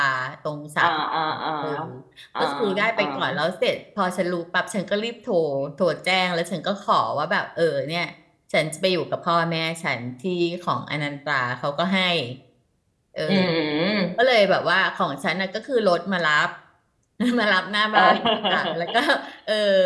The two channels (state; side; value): identical; both; correlation 1.00